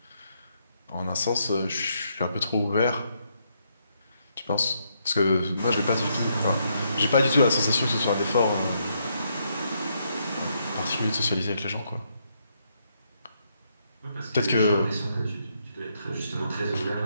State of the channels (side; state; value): both; inverted; correlation -0.76